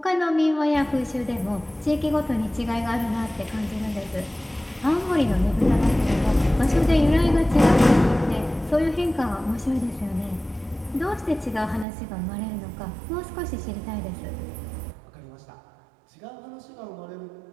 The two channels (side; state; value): left; drops out; at 11.9 s